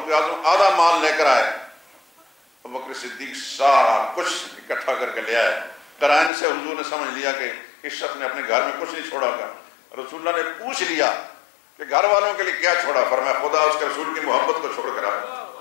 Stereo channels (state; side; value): drops out; right; at 6.3 s